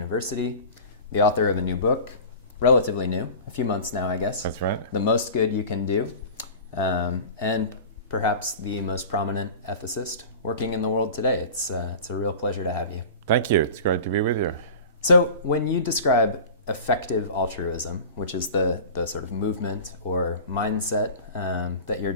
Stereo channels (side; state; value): both; inverted; correlation -0.36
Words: the author of a new book, relatively new, a few months now, I guess. That's right. The Most Good You Can Do, and perhaps the most prominent ethicist working in the world today. It's a real pleasure to have you. Thank you. It's great to be with you. So when you describe effective altruism, which is the sort of movement or mindset that you're